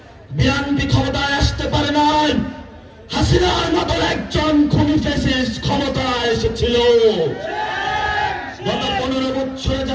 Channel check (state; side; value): identical; both; correlation 1.00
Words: বিএনপি ক্ষমতায় আসতে পারে নাই। হাসিনার মতো একজন খুনি ফ্যাসিস্ট ক্ষমতায় এসেছিল। গত 15 বছরে